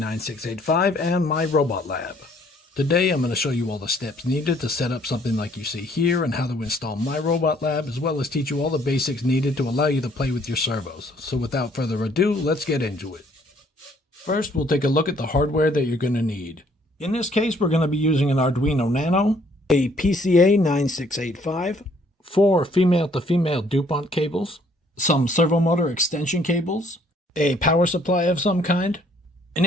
and MYROBOTLAB. Today I'm going to show you all the steps needed to set up something like you see here and how to install MYROBOTLAB, as well as teach you all the basics needed to allow you to play with your servos. So without further ado, let's get into it. First, we'll take a look at the hardware that you're going to need. In this case, we're going to be using an Arduino Nano, a PCA9685, 4 female-to-female DuPont cables, some servo motor extension cables, a power supply of some kind. An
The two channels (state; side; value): normal; both; correlation 0.63